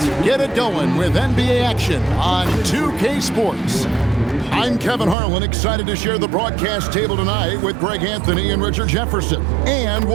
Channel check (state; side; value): drops out; left; at 5.2 s